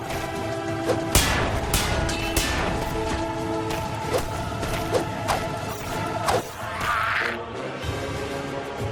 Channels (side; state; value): both; identical; correlation 1.00